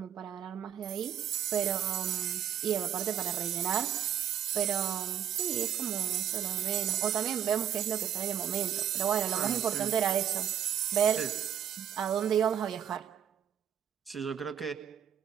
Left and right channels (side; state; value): left; quieter; 9.4 dB